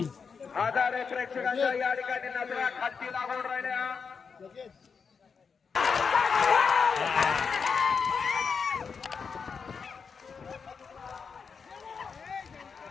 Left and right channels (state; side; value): quieter; right; 5.7 dB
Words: हजारो प्रेक्षकांच्या या ठिकाणी नजरा खालती लागून राहिल्या.